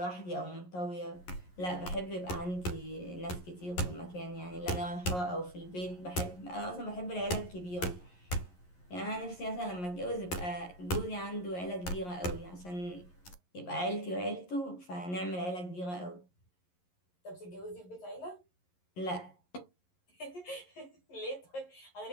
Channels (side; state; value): right; late; 11 ms